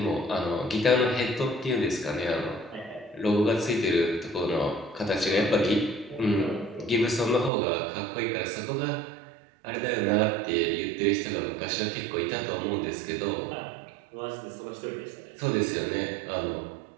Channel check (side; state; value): left; drops out; at 7.5 s